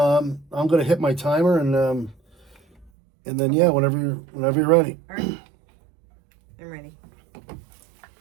gonna hit my timer and then yeah, whenever you're ready. All right. I'm ready.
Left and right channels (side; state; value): left; drops out; at 2.9 s